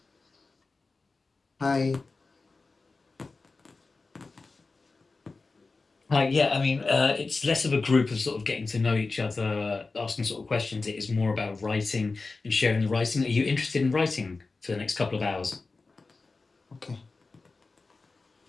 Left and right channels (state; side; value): quieter; right; 3.8 dB